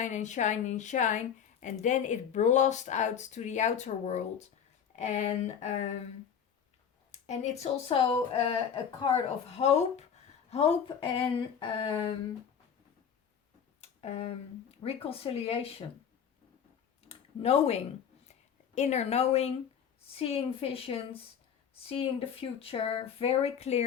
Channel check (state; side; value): quieter; right; 7.9 dB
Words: and shine and shine, and then it blasts out to the outer world. And it's also a card of hope, Hope and reconciliation. Knowing, inner knowing, seeing visions, seeing the future very